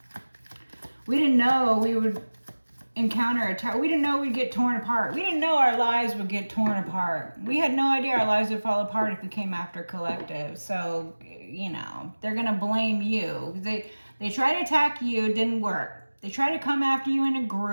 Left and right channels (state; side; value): inverted; both; correlation -1.00